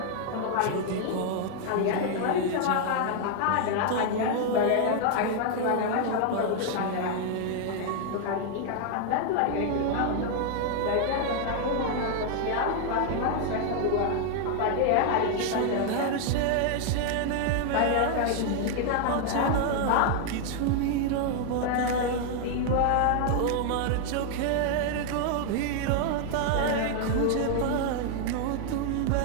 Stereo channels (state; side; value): different; both; correlation 0.00